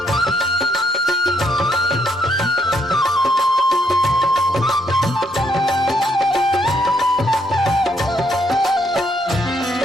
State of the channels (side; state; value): both; normal; correlation 0.72